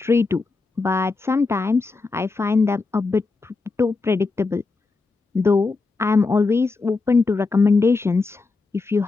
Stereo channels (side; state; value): right; quieter; 3.9 dB